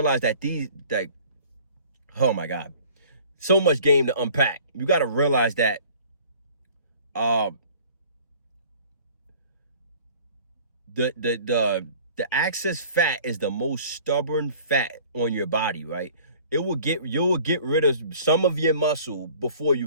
that oh my God, so much game to unpack. You got to realize that the excess fat is the most stubborn fat on your body, right? You'll get rid of some of your muscle before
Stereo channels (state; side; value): inverted; both; correlation -0.49